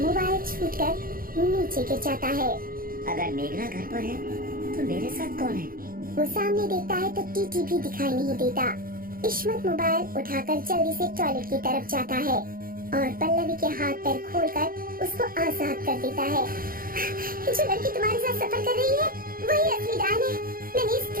छूटकर नीचे गिर जाता है। अगर मेघना घर पर है तो मेरे साथ कौन है? वो सामने देखता है तो टीटी भी दिखाई नहीं देता। इश्मत मोबाइल उठाकर जल्दी से टॉयलेट की तरफ जाता है और पल्लवी के हाथ पैर खोलकर उसको आजाद कर देता है। जो लड़की तुम्हारे साथ सफर कर रही है वही असली डायन है। मैंने इस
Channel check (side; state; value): left; late; 0.42 ms